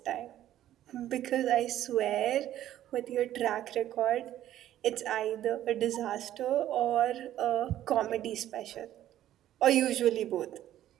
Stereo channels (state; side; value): quieter; left; 12.5 dB